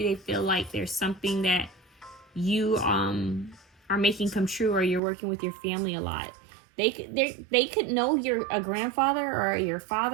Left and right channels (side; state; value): left; drops out; at 5.0 s